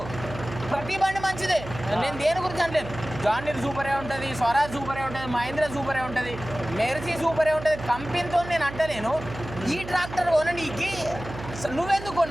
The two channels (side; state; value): right; noise; hum, 11 dB below the sound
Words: ప్రతి బండి మంచిదే, నేను దేని గురించి అంటలేను. జాండీర్ సూపరే ఉంటుంది, స్వరాజ్ సూపరే ఉంటుంది, మహేంద్ర సూపరే ఉంటుంది, మెర్సీ సూపరే ఉంటుంది. కంపెనీతో నేను అంటలేను. ఈ ట్రాక్టర్ కొనడానికి నువ్వెందుకు